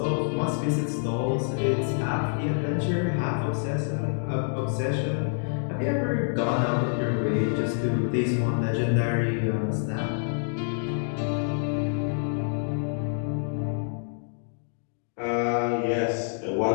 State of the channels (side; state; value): right; silent; digital silence